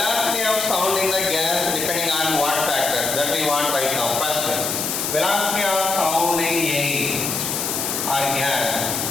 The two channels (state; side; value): noise; left; hiss, 2 dB below the sound